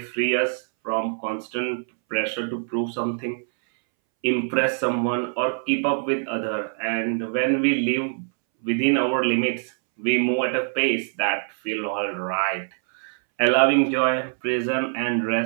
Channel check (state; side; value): silent; left; 63 dB below the other